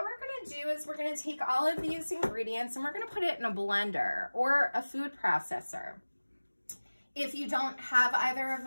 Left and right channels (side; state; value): both; inverted; correlation -1.00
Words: we're going to do is we're going to take all of these ingredients and we're going to put it in a blender or a food processor. If you don't have either of